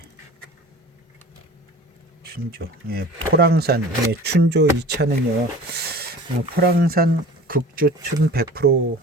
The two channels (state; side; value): normal; both; correlation 0.41